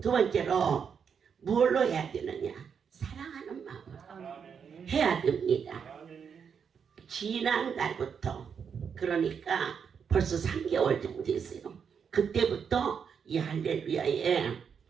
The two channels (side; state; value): left; quieter; 6.9 dB